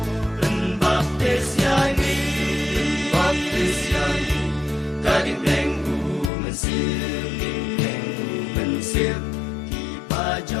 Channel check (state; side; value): drops out; right; at 6.3 s